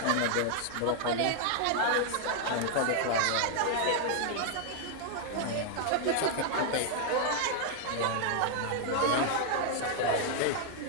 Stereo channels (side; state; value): both; different; correlation 0.00